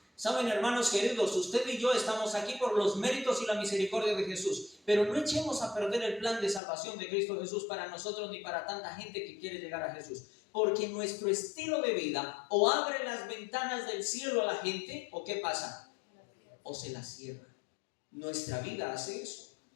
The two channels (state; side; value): drops out; right; at 6.6 s